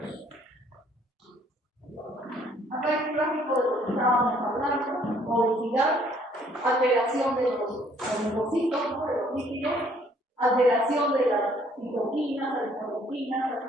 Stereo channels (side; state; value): both; normal; correlation 0.62